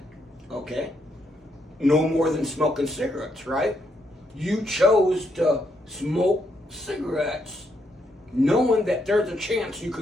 Okay. No more than smoking cigarettes, right? You chose to smoke cigarettes knowing that there's a chance you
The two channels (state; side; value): normal; both; correlation 0.77